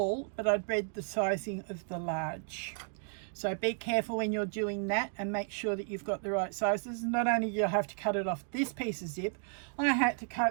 but I'd read the sizing of the large. So be careful when you're doing that and make sure that you've got the right sizes. Not only do you have to cut it off this piece of zip, I had to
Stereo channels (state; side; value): silent; left; 56 dB below the other